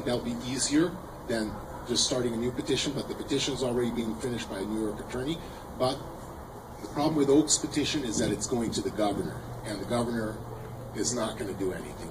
that'll be easier than just starting a new petition. But the petition is already being finished by a New York attorney. But the problem with Oak's petition is that it's going to the governor, and the governor is not going to do anything.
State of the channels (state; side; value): identical; both; correlation 1.00